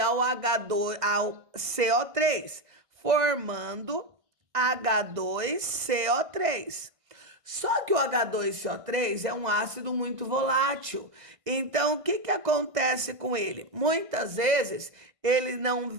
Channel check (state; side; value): late; left; 1.6 ms